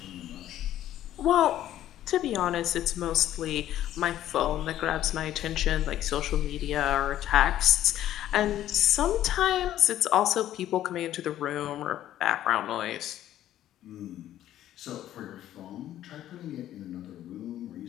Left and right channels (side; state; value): right; quieter; 12.5 dB